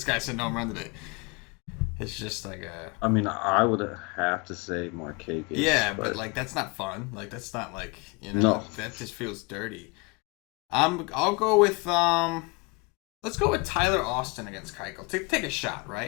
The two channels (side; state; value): right; quieter; 28.0 dB